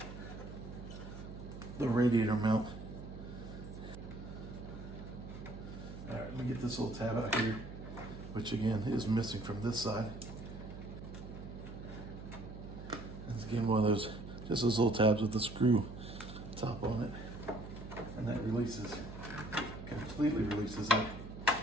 the radiator mount. All right, let me get this little tab out here, which again is missing from this side. It's again one of those, just those little tabs with the screw top on it. And that releases, completely releases that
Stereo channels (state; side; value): noise; right; hum, 11 dB below the sound